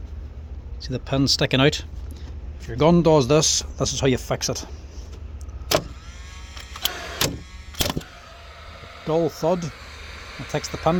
See the pin sticking out? If your gun does this, this is how you fix it. Dull thud. It takes the pin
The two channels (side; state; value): both; identical; correlation 1.00